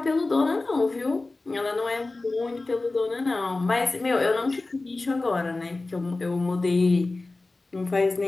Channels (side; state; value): right; quieter; 3.3 dB